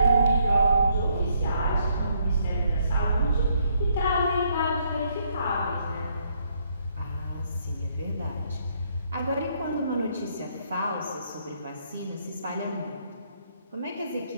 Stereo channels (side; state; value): both; inverted; correlation -0.71